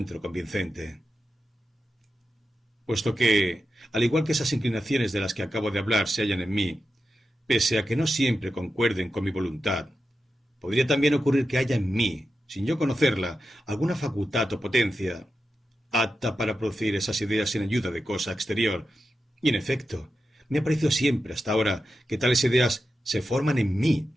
convincente. Puesto que, al igual que esas inclinaciones de las que acabo de hablar se hallan en mí, pese a que no siempre concuerden con mi voluntad, podría también ocurrir que haya en mí, sin yo conocerla, alguna facultad o potencia apta para producir esas ideas sin ayuda de cosa exterior. Y en efecto, me ha parecido siempre hasta ahora que tales ideas se forman en mí,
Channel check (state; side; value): normal; both; correlation 0.89